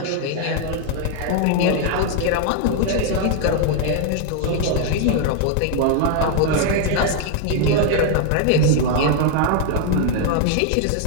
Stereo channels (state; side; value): different; both; correlation 0.00